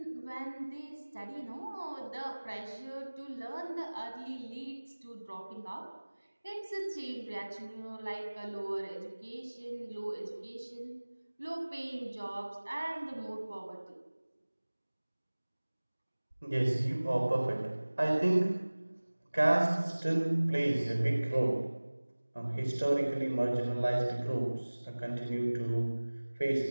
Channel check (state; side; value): inverted; both; correlation -1.00